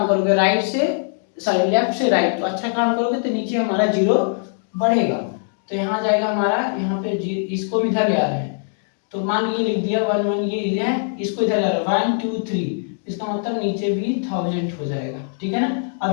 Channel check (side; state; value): right; silent; digital silence